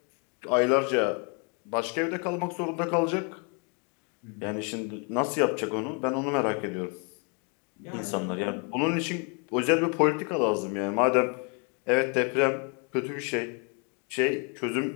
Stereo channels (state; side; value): quieter; right; 35.2 dB